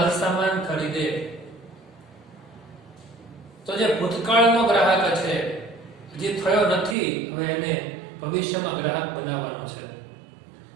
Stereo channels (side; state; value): left; drops out; at 7.0 s